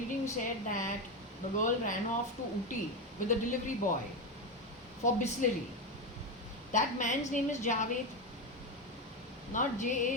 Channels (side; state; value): both; normal; correlation 0.13